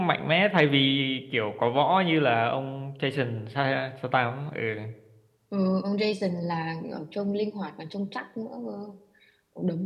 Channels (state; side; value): identical; both; correlation 1.00